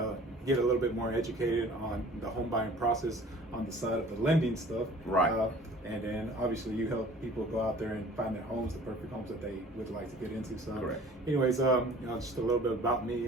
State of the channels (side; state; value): both; normal; correlation 0.48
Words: get a little bit more educated on the home buying process on the side of the lending stuff. Right. And then obviously you help people go out there and find their homes, the perfect homes that they would like to get into. So correct. Anyways, just a little bit about me.